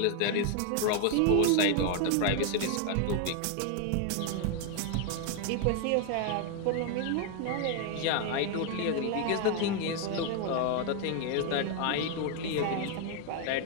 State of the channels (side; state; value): both; different; correlation 0.01